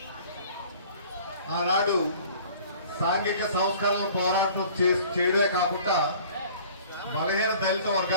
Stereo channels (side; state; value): both; inverted; correlation -0.49